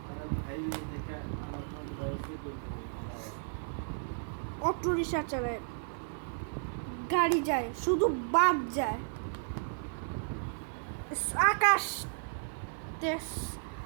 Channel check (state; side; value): silent; left; 55 dB below the other